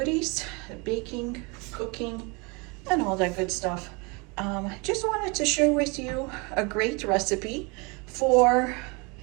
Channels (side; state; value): left; quieter; 29.4 dB